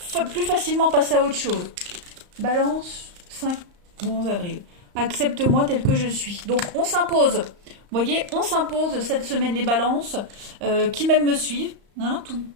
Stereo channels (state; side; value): late; left; 35 ms